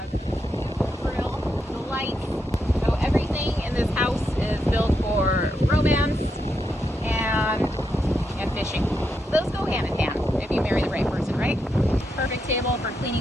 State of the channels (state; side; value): normal; both; correlation 0.83